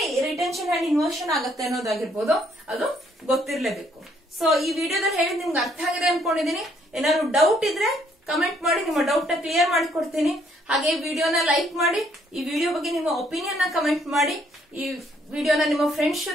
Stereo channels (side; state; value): both; normal; correlation 0.68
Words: ರಿಟೆನ್ಷನ್ ಅಂಡ್ ಇನ್ವರ್ಷನ್ ಆಗುತ್ತೆ ಅನ್ನೋದಾಗಿರ್ಬೋದು ಅದು ಗೊತ್ತಿರ್ಲೇಬೇಕು. ಸೊ ಈ ವಿಡಿಯೋದಲ್ಲಿ ಹೇಳಿದ್ ನಿಮ್ಗೆ ಅರ್ಥ ಆಗಿದೆ ಅನ್ಕೊಂಡಿದೀನಿ. ಏನಾದ್ರು ಡೌಟ್ ಇದ್ರೆ ಕಮೆಂಟ್ ಮಾಡಿ, ನಿಮ್ಮ ಡೌಟ್ ನ ಕ್ಲಿಯರ್ ಮಾಡಿ ಕೊಡ್ತೀನಿ. ಹಾಗೆ ಈ ವಿಡಿಯೋನ ಲೈಕ್ ಮಾಡಿ, ಈ ವಿಡಿಯೋ ಬಗ್ಗೆ ನಿಮ್ಮ ಒಪಿನಿಯನ್ ನ ಕಮೆಂಟ್ ಮಾಡಿ, ಈ ವಿಡಿಯೋನ ನಿಮ್ಮ ಫ್ರೆಂಡ್ಸ್